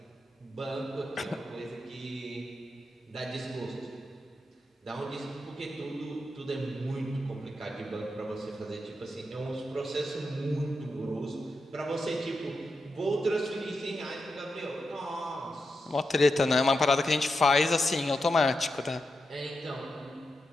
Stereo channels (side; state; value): both; normal; correlation 0.87